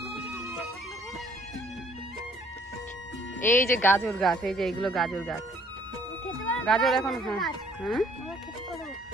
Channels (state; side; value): normal; both; correlation 0.61